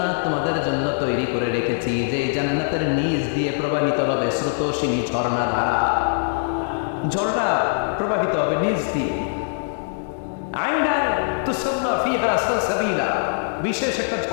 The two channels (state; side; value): silent; right; digital silence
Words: তোমাদের জন্য তৈরি করে রেখেছি, যে জান্নাতের নিচ দিয়ে প্রবাহিত হবে স্রোতস্বিনী ঝর্ণা ধারা। ঝর্ণা প্রবাহিত হবে নিচ দিয়ে। আইনান তুসাম্মা ফিহা সালসাবিলা, বিশেষ একটা